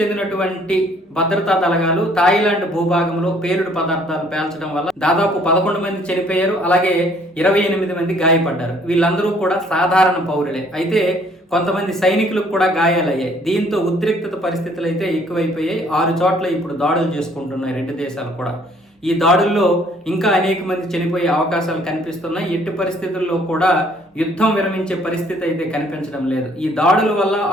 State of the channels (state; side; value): normal; both; correlation 0.60